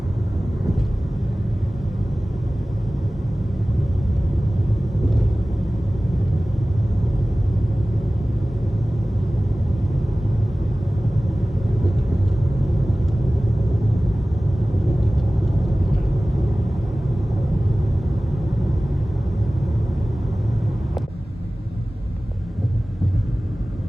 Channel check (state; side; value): normal; both; correlation 0.97